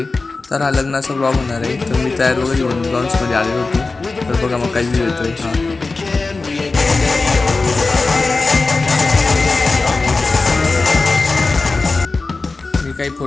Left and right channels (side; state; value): right; quieter; 3.7 dB